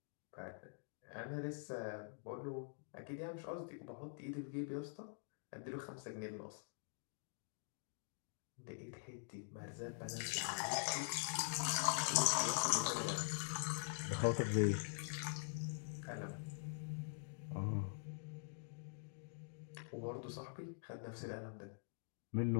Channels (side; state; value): right; silent; digital silence